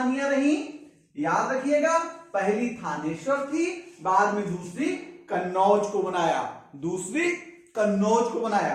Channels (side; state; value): both; identical; correlation 1.00